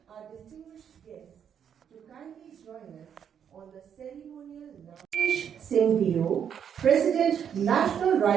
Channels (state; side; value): quieter; left; 8.3 dB